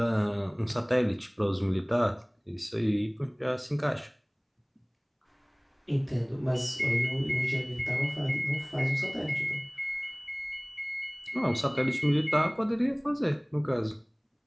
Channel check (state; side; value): identical; both; correlation 1.00